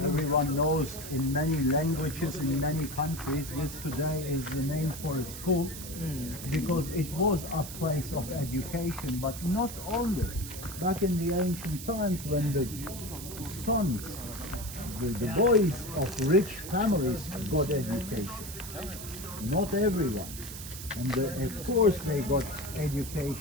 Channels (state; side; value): noise; right; hiss, 10 dB below the sound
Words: Everyone knows in many languages, in many countries, this today is the name for a school because it was a place of education, but not only. Back in the ancient times when the sons, the boys of rich families got education, not everyone. And of course they got